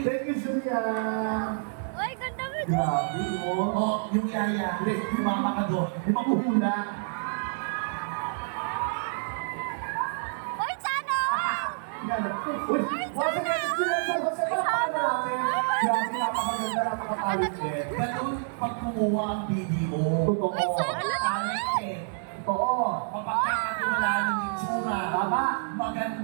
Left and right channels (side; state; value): left; silent; 58 dB below the other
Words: Thank you, Julian. Uy, ganda mo. Grabe, mo. Oh, yung yaya. Sumama ka doon. Yung makuhula. Uy, sana! Uy, once again, si Julian San Jose, palakpakan natin. Grabe, napakaganda, napakatalented. Ganun pag kumuha ang video. Totoo. Uy, sana! Talented. Totoo. Mapagkakatiwala ng itsura. Tama.